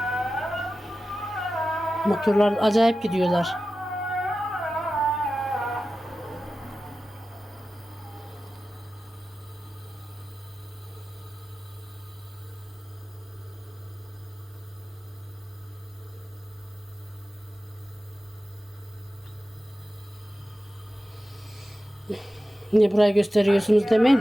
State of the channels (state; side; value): normal; both; correlation 0.94